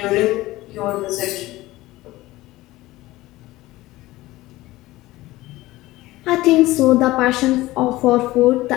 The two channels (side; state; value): right; quieter; 18.0 dB